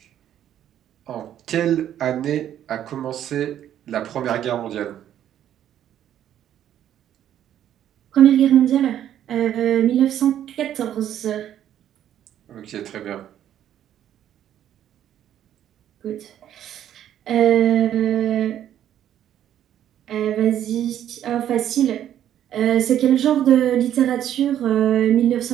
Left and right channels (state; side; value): quieter; left; 10.9 dB